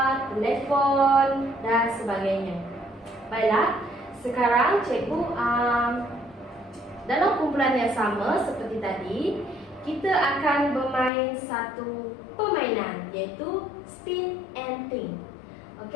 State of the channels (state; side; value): drops out; right; at 11.1 s